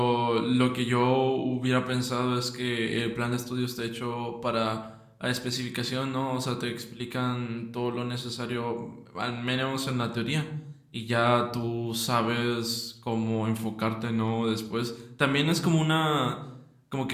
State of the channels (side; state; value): both; identical; correlation 1.00